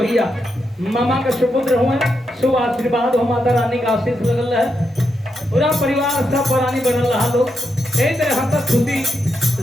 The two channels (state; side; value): normal; both; correlation 0.84